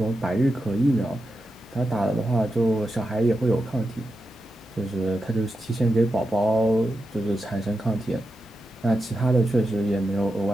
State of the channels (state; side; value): normal; both; correlation 0.88